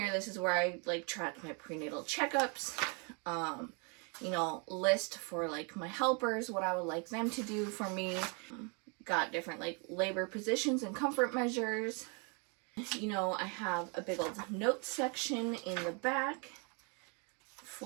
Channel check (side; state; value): left; quieter; 34.8 dB